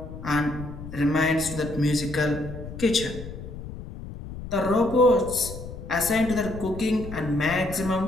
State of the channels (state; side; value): noise; left; rumble, 11 dB below the sound